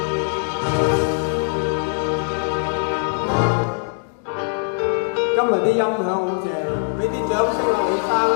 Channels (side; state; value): right; silent; 59 dB below the other